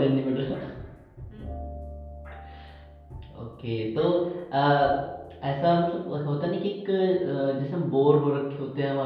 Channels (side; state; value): both; identical; correlation 1.00